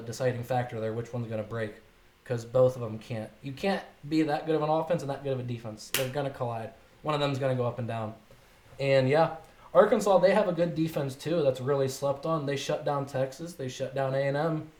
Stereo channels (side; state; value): both; identical; correlation 1.00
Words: deciding factor there? Which one's going to break? Because both of them can't. You can't be that good of an offense and that good of a defense. They're going to collide. One of them's going to go up and down. And yeah, Arkansas, they have a good defense too that's really slept on. They shut down Texas. They shut down A&M.